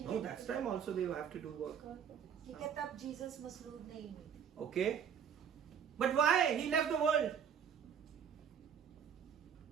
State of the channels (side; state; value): left; quieter; 7.9 dB